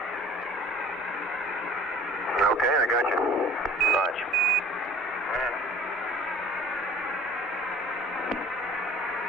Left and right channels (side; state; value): both; normal; correlation 0.47